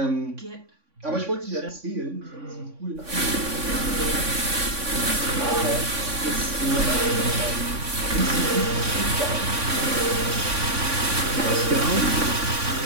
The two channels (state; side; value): late; left; 3.5 ms